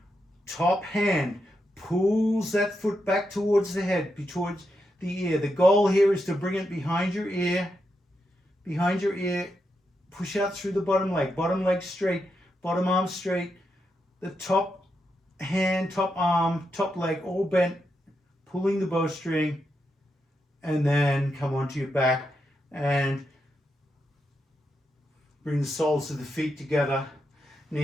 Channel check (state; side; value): normal; both; correlation 0.84